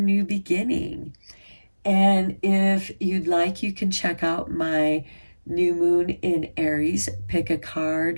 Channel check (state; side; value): inverted; both; correlation -1.00